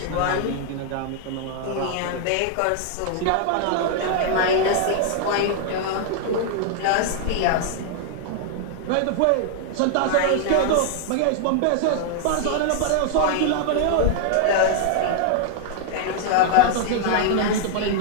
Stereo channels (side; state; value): both; different; correlation 0.00